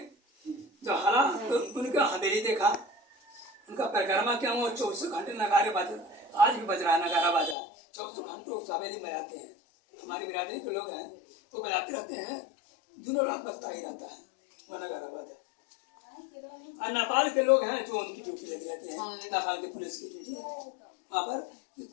जब हरा तो उनका हवेली देखा, उनका परिक्रमा किया। वो 24 घंटे नगारे बाजे, आज भी बज रहा है नगारा बाजा, 24 घंटे उस हवेली में आते हैं। हमारी बिरादरी के लोग हैं, वो बजाते रहते हैं, दिनों रात बजता ही रहता है वो नगारा बाजा। और नेपाल के लोग हैं जो उनकी ड्यूटी लगी रहती है, नेपाल के पुलिस की ड्यूटी है। वहाँ पर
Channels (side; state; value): right; drops out; at 7.6 s